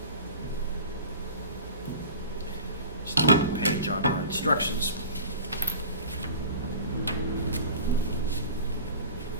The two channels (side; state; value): both; inverted; correlation -0.38